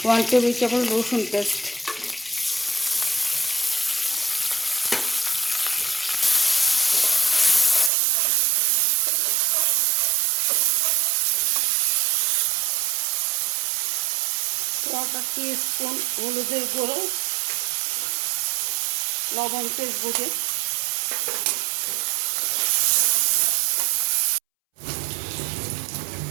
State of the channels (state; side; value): drops out; left; at 7.9 s